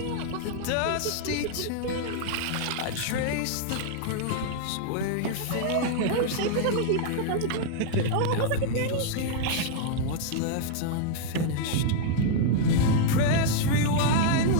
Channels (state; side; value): different; both; correlation -0.01